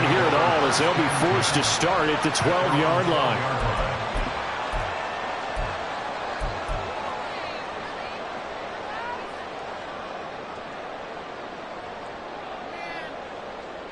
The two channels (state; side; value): identical; both; correlation 1.00